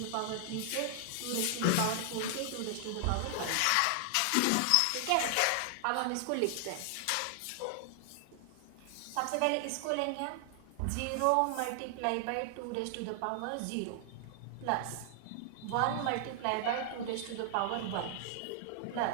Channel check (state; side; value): different; both; correlation 0.00